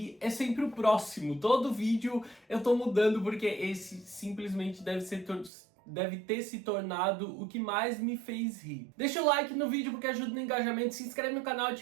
é sempre o próximo. Todo vídeo eu tô mudando porque esse simplesmente deve ter se tornado o que mais me fez rir. Deixa o like no vídeo porque ajuda no engajamento, se inscreve no canal,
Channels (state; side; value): drops out; left; at 5.5 s